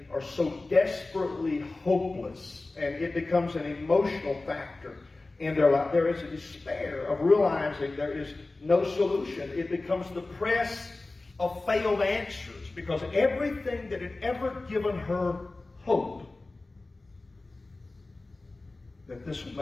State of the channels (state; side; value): quieter; right; 3.2 dB